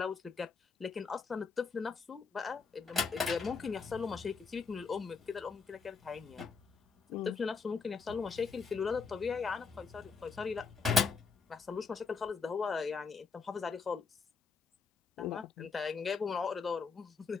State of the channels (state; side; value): quieter; right; 5.1 dB